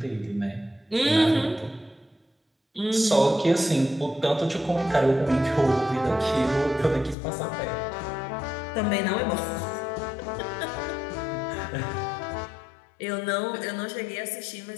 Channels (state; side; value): drops out; right; at 7.2 s